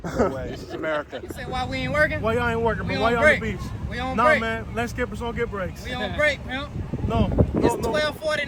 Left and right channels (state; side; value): identical; both; correlation 1.00